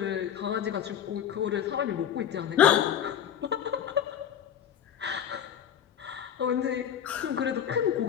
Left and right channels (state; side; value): quieter; right; 9.5 dB